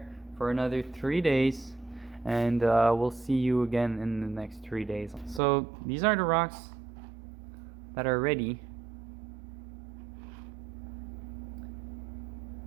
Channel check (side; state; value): left; drops out; at 5.4 s